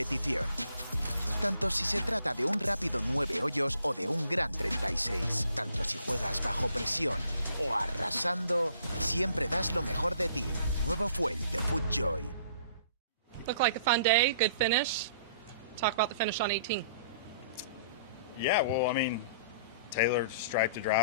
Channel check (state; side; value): inverted; both; correlation -0.58